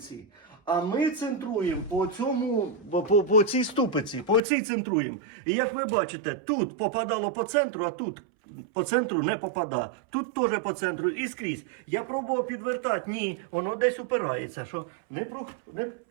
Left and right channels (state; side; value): drops out; left; at 4.4 s